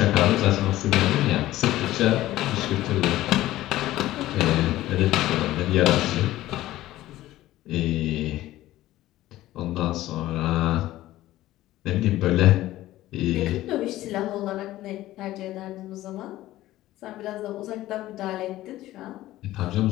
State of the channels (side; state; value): right; quieter; 15.5 dB